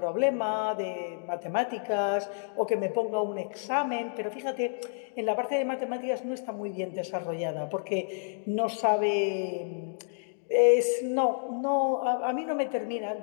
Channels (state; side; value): silent; right; digital silence